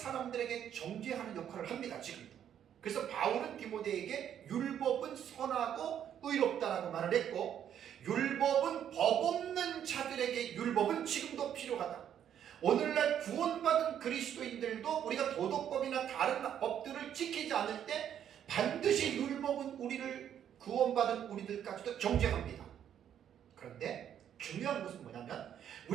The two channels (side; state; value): left; quieter; 9.6 dB